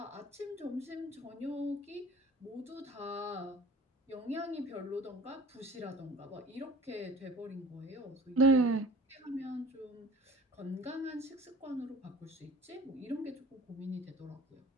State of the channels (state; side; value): normal; both; correlation 0.44